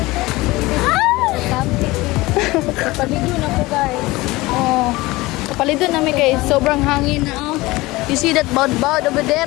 Kapalido na po guys. Oh. Kapalido namin guys. Sobrang hangin na oh. You see that boud over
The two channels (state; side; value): quieter; right; 20.6 dB